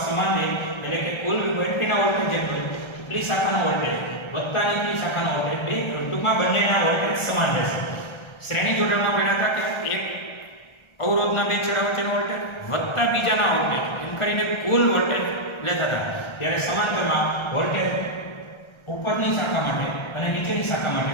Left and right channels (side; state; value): right; late; 1.3 ms